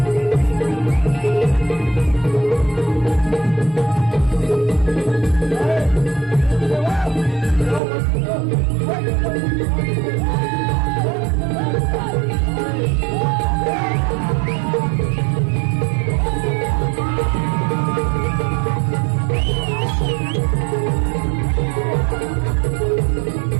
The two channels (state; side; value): drops out; left; at 7.8 s